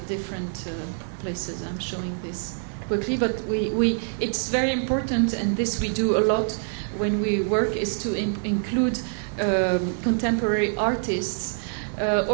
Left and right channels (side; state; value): left; silent; 61 dB below the other